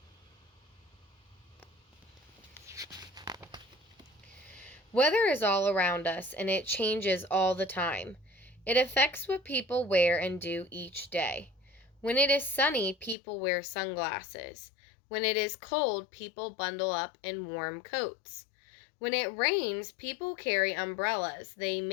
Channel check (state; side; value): drops out; right; at 13.2 s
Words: Weather is all around us, and it changes all the time. It affects what people wear and do each day. When it is sunny, people wear sunglasses. When it is cold, people bundle up in warm coats. When it rains, people carry umbrellas. They